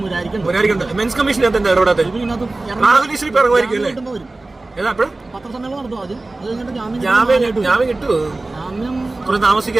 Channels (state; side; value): quieter; left; 3.1 dB